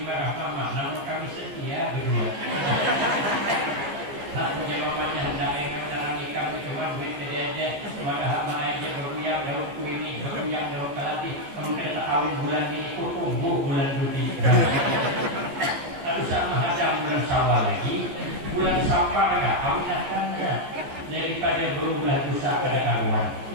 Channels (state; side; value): late; left; 14 ms